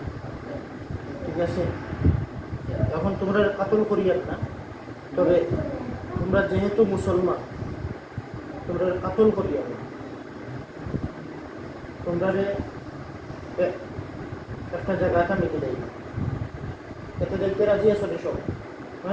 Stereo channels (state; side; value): identical; both; correlation 1.00